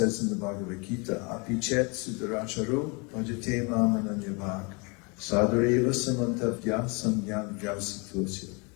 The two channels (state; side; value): quieter; right; 31.2 dB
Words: in the Bhagavad Gita, apichet sudaracharo bhajate mamananyabhak sadhareva samantavya samyam vyavasitosya